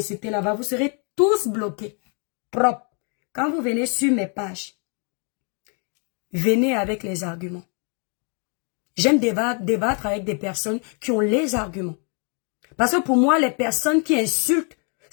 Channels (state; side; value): quieter; right; 38.7 dB